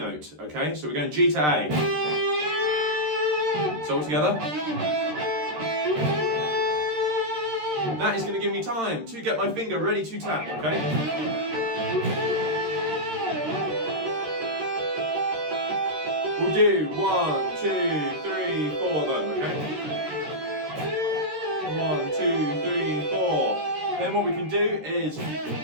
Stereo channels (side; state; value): left; late; 13 ms